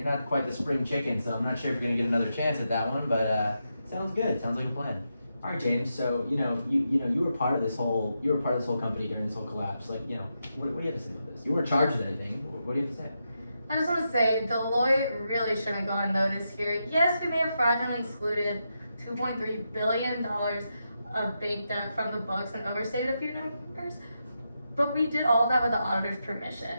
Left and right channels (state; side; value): inverted; both; correlation -0.85